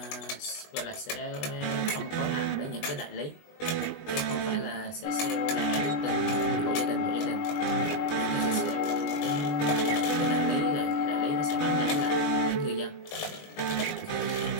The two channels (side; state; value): right; late; 20 ms